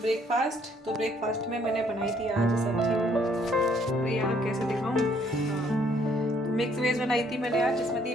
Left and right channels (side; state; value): both; normal; correlation 0.65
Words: ब्रेकफास्ट। तो ब्रेकफास्ट में मैंने बनाई थी आज सब्जी। अरे यार कैसे दिखाऊँ, तो मिक्स वेज बनाई थी मैंने आज, जिसमें थी